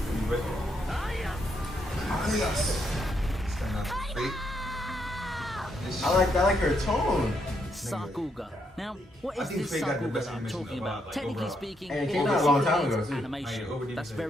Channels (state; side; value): normal; both; correlation 0.77